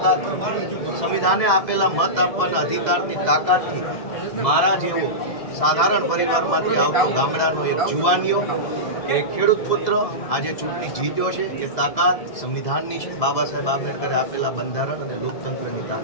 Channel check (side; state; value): right; late; 2.0 ms